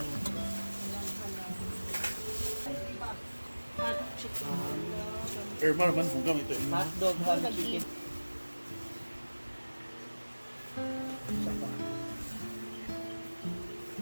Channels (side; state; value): both; inverted; correlation -1.00